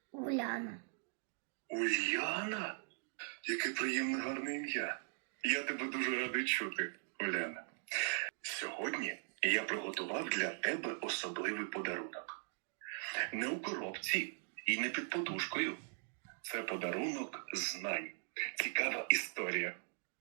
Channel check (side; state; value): left; silent; 51 dB below the other